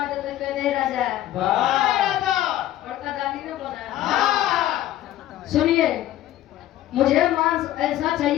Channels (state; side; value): quieter; right; 13.6 dB